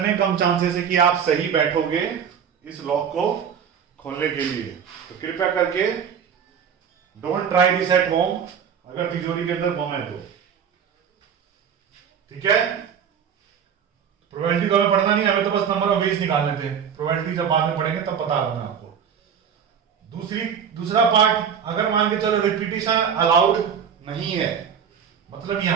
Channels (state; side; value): quieter; left; 7.6 dB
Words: कम चांसेस है कि आप सही बैठोगे इस लॉक को खोलने के लिए। तो कृपया करके don't try this at home, अगर तिजोरी के अंदर बम है तो। ठीक है, प्रोबेबिलिटी तो हमें पढ़ना नहीं, हमें तो बस नंबर ऑफ वेज निकालने थे। प्रोबेबिलिटी जब बाद में पढ़ेंगे तब बता रहा हूं मैं आपको। दूसरा पार्ट, अगर मान के चलो रिपीटिशन अलाउड नहीं है, मतलब